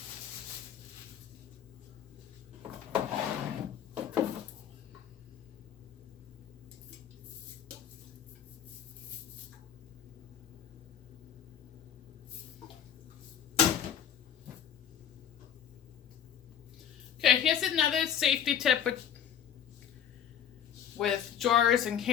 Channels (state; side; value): quieter; right; 9.1 dB